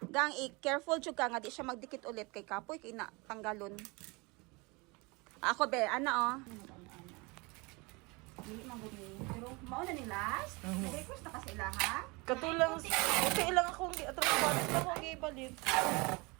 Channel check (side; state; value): left; quieter; 26.9 dB